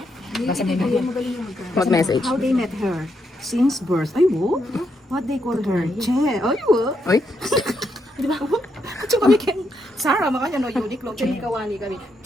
Mag-message. How they met her? Since birth. Ay, wo? What they call her? Che. Ay, wo? Uy, Di ba? Kasi kami kay Sarah, makanya no, Uniqlo, kawani kami.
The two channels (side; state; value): both; normal; correlation 0.79